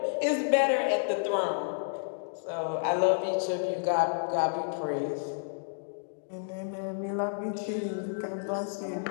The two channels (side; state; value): right; silent; digital silence